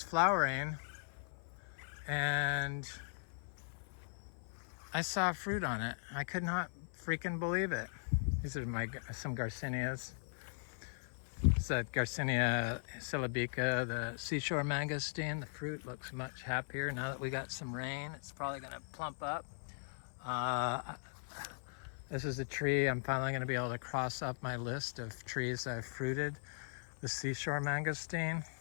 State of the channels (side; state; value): right; silent; 52 dB below the other